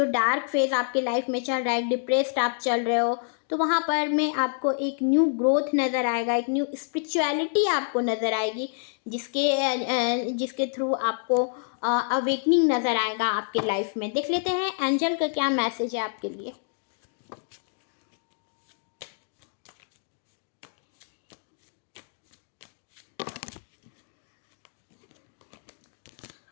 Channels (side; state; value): right; silent; digital silence